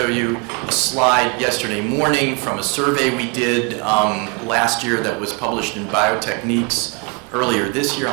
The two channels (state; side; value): quieter; left; 32.8 dB